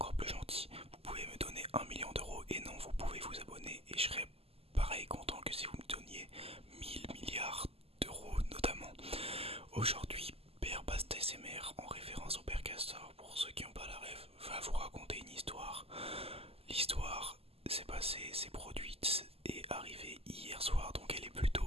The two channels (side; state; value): left; late; 0.29 ms